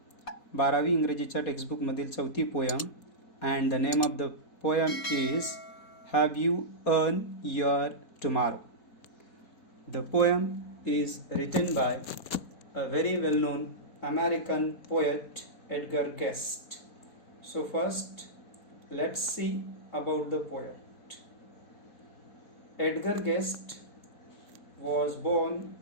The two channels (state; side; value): late; right; 4.2 ms